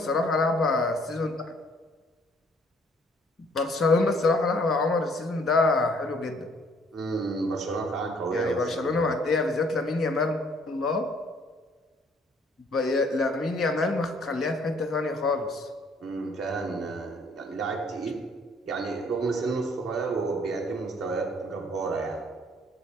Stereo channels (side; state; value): both; normal; correlation 0.61